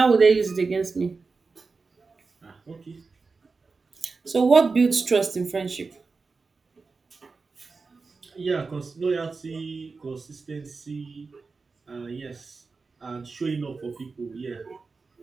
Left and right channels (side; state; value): left; quieter; 4.3 dB